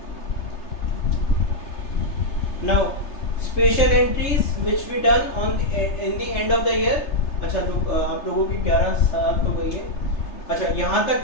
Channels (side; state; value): right; late; 3.3 ms